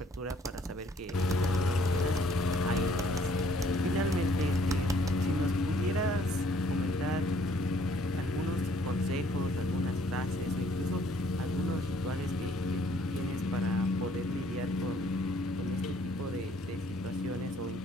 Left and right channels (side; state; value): both; normal; correlation 0.62